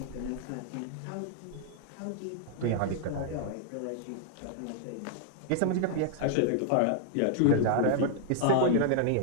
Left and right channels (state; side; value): different; both; correlation 0.00